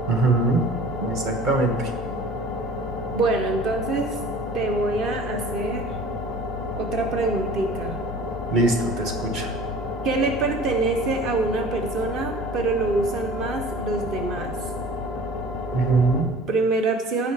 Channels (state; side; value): normal; both; correlation 0.45